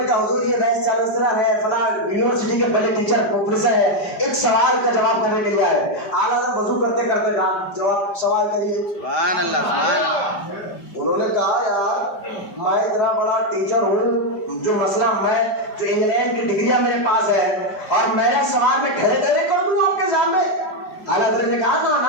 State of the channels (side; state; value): right; late; 5.0 ms